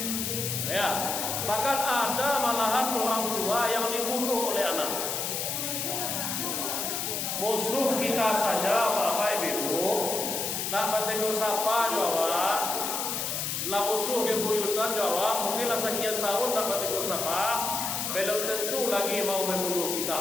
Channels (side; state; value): left; noise; hiss, 2 dB below the sound